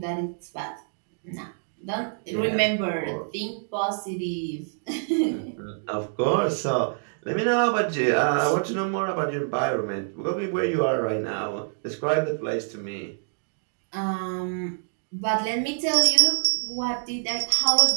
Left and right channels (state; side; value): silent; left; digital silence